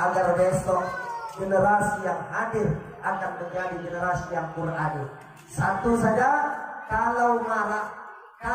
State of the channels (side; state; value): both; identical; correlation 1.00